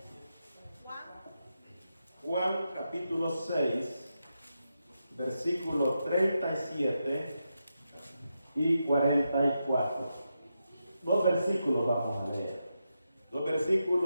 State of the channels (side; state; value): both; inverted; correlation -0.86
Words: Juan capítulo 6, versículo 37 y 44. Dos versículos vamos a leer. Dos